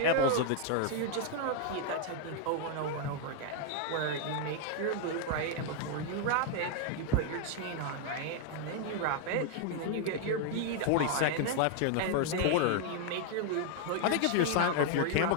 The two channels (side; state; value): both; different; correlation 0.00